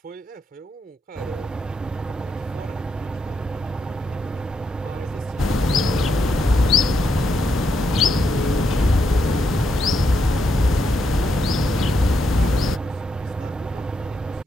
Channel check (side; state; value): both; normal; correlation 0.80